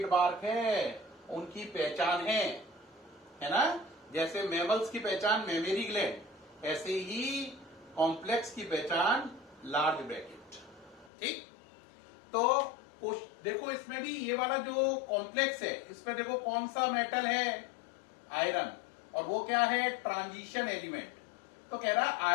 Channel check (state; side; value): drops out; right; at 11.1 s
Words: है, उनकी पहचान है ना। जैसे मैमल्स की पहचान मेमरी ग्लैंड, ऐसे ही कॉम्प्लेक्स की पहचान लार्ज ब्रैकेट। ठीक, तो देखो इसमें भी ये वाला जो कॉम्प्लेक्स है, इसमें देखो कौन सा मेटल है? आयरन। और वो क्या है? Transition element. तो कह रहा है